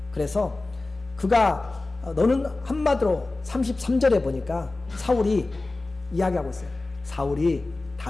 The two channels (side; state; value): right; quieter; 3.2 dB